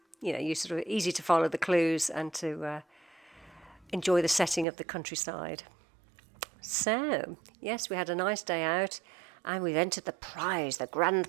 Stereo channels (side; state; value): left; drops out; at 4.7 s